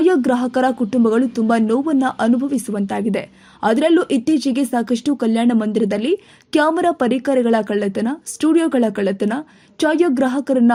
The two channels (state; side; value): identical; both; correlation 1.00